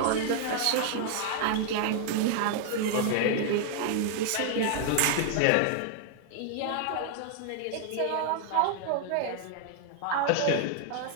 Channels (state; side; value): different; both; correlation 0.00